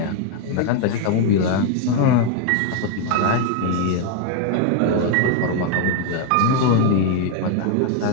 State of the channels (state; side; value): different; both; correlation 0.01